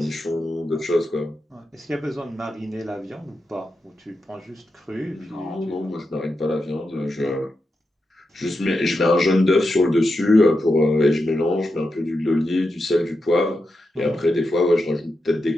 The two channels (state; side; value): normal; both; correlation 0.88